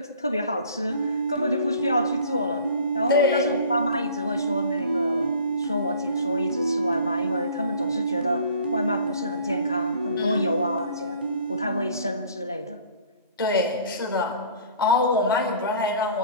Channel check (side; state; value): both; inverted; correlation -0.50